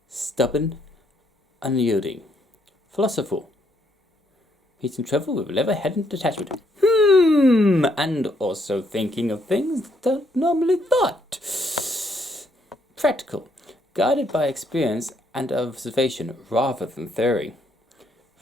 stubborn, unyielding. Philosophical, meeting trouble with level-headed detachment. And also thinking of things that don't normally thought. Practical, guided by experience and observation rather than theory.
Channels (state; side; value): normal; both; correlation 0.72